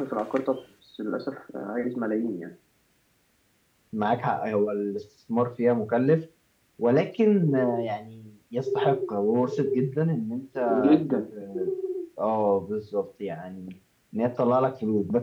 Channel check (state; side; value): identical; both; correlation 1.00